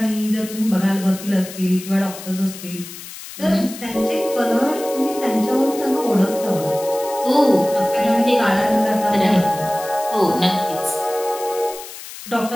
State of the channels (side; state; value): left; noise; hiss, 13 dB below the sound